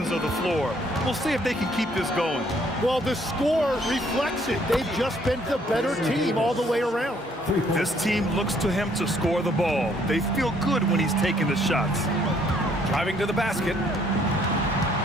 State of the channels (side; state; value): both; normal; correlation 0.65